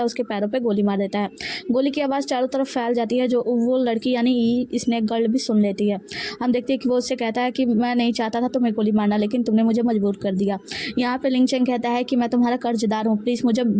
उसके पैरों पे गोली मार देता है। गोली की आवाज़ चारों तरफ फैल जाती है, जो वो लड़की यानी स्नेक गर्ल भी सुन लेती है। हम देखते हैं कि वो उससे कहता है कि मैं नहीं चाहता था तुम्हें गोली मारना, लेकिन तुमने मुझे मजबूर कर दिया। यहाँ पे लिंग चेंग कहता है कि मैं तुम्हारा कर्जदार हूँ, प्लीज़ मुझे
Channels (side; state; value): both; identical; correlation 1.00